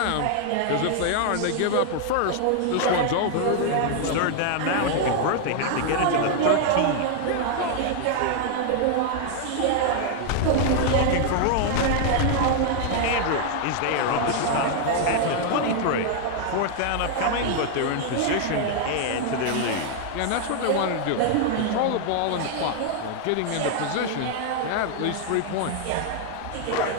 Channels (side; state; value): both; different; correlation 0.00